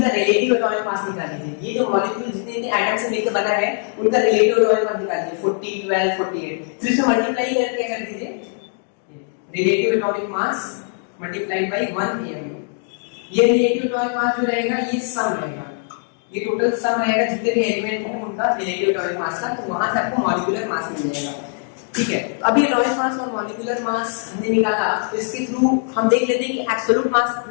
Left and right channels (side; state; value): right; silent; 56 dB below the other